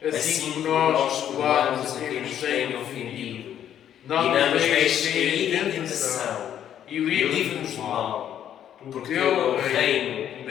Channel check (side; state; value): right; quieter; 10.2 dB